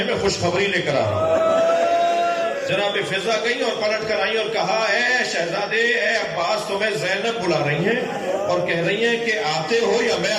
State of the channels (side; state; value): both; identical; correlation 1.00